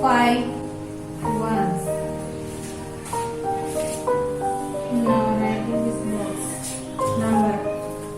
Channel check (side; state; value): both; identical; correlation 1.00